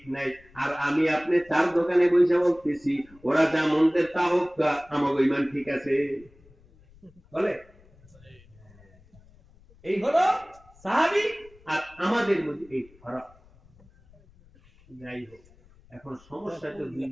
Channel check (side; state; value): left; noise; rumble, 27 dB below the sound